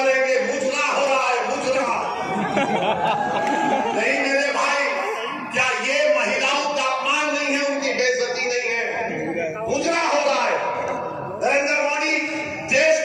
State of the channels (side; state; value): both; identical; correlation 1.00